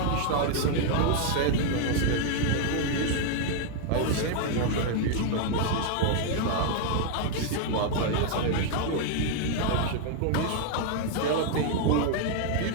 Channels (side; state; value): both; different; correlation 0.00